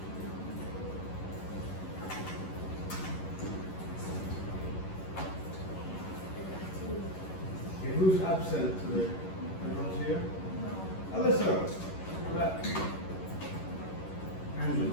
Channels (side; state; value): right; late; 11 ms